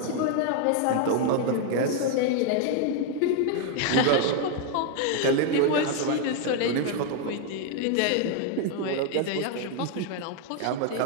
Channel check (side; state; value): both; different; correlation 0.01